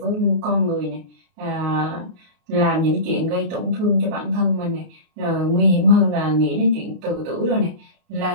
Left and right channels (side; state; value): left; late; 32 ms